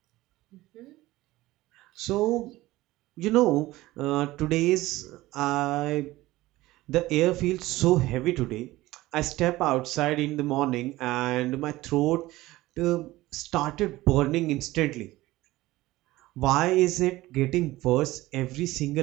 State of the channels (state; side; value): quieter; left; 17.9 dB